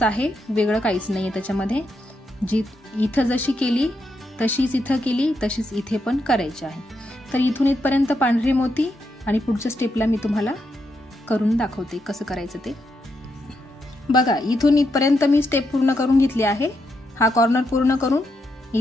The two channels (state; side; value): normal; both; correlation 0.81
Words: आहे, वेगळं काहीच नाहीये त्याच्यामध्ये। जी इथं जशी केली तशीच इथं केली, तशीच इथे पण करायची आहे। तर इथून इथपर्यंत पांढरे मोती आणि पुढच्या स्टेपला मी तुम्हाला करून दाखवते कसं करायचं ते। बघा इथून इथपर्यंत मी स्टेप पूर्ण करून घेतली आहे। हा कॉर्नर पूर्ण करून